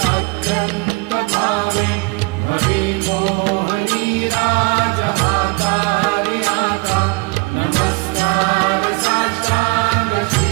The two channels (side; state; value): left; quieter; 27.5 dB